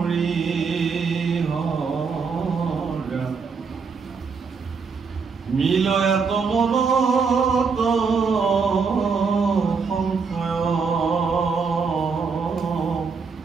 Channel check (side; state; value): left; quieter; 5.3 dB